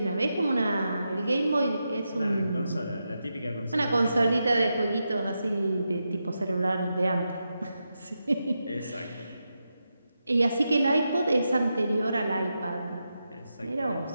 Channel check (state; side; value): inverted; both; correlation -0.87